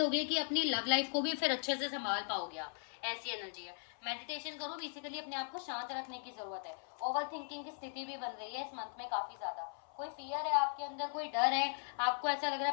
कि अपनी लव लाइफ को भी फिर अच्छे से संभाल पाओगे आप, ऐसी एनर्जी है। मेडिटेशन करो, बेसिकली अपने आप को शांत रखने की जरूरत है। ओवर थिंकिंग की स्थिति भी बन रही है इस मंथ में काफी ज्यादा, कोई फियर है आपके अंदर, कोई डर है, आपको ऐसा लग रहा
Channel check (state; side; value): silent; right; 52 dB below the other